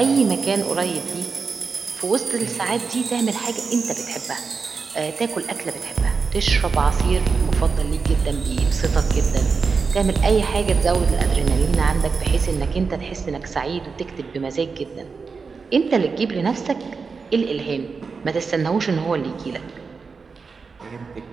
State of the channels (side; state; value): left; quieter; 4.9 dB